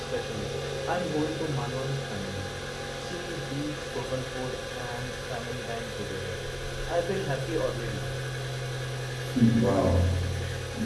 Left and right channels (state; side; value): identical; both; correlation 1.00